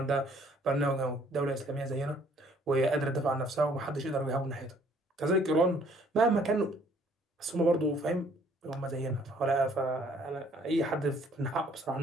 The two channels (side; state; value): both; normal; correlation 0.61